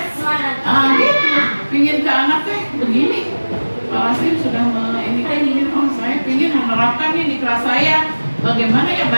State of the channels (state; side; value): inverted; both; correlation -1.00